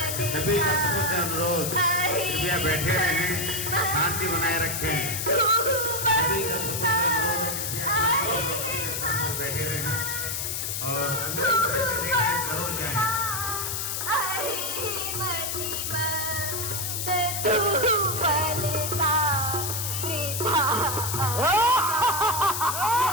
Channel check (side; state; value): left; noise; hiss, 2 dB below the sound